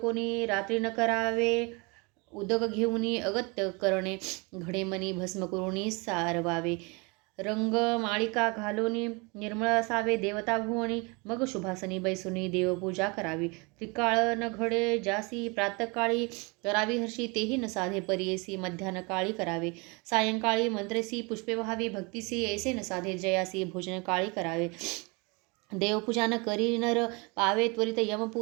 रात्री न करावे उदक घेऊनी अगत्य करणे घडेमणी भस्म करुणी सारवावे रंग माळिका घालोनी निर्मळ असावे देवता भुवनी मग शुभासनी बैसुनी देवपूजा करावी त्रिकाळ न घडे जासी प्रातकाळी करावी हर्षी तेही न साधे परियेसी मध्यान काळी करावे सायंकाळी मंत्रेसी पुष्पे व्हावी भक्तीसी ऐसे न साधे जयासी भोजन काळी करावे देवपूजा न करी नर पावे त्वरित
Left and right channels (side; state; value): left; quieter; 28.8 dB